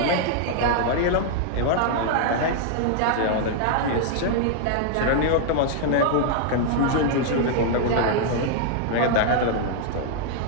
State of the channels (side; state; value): both; different; correlation -0.01